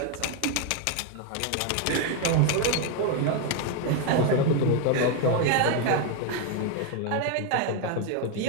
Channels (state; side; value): different; both; correlation 0.01